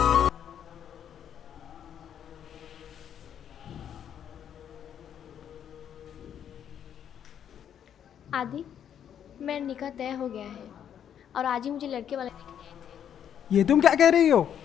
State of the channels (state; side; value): quieter; right; 9.2 dB